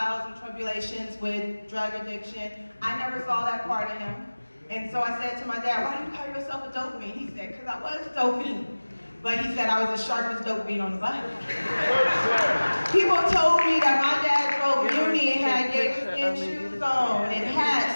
and tribulations with drug addiction. I never saw that part of him. And so I said to my dad, why do you call yourself a dope fiend? He said, because I was a dope fiend. But he said I was the sharpest dope fiend on the block. People told me that my dad drove uni and had gator shoes on and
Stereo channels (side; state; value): both; inverted; correlation -1.00